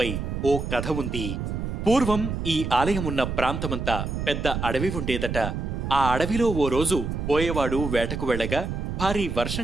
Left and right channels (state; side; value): noise; right; rumble, 4 dB below the sound